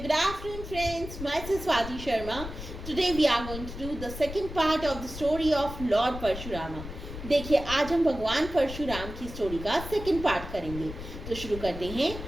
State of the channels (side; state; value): left; noise; rumble, 10 dB below the sound